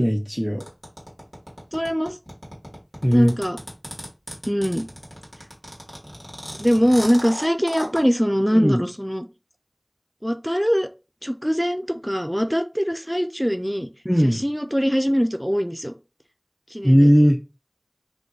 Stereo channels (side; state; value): both; identical; correlation 1.00